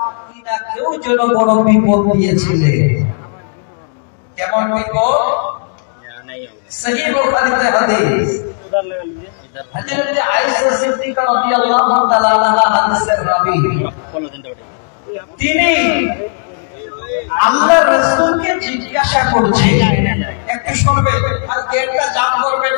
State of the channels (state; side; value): silent; right; 70 dB below the other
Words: কেউ যেন বড় বিপদ দিয়েছিলেন। কেমন বিপদ? সহিহ বুখারীতে হাদিস, হযরত আয়েশা সিদ্দিকা রাদিয়াল্লাহু তাআলা আনহা হাদিসের রাবী। তিনি আল্লাহ রাসূলকে জিজ্ঞাসা করছে, একটু শুনবে আর গেটটা জাম করবেন